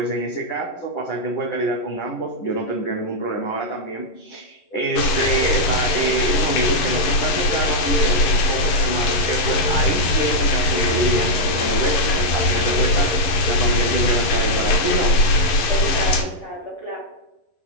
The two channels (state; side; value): late; right; 11 ms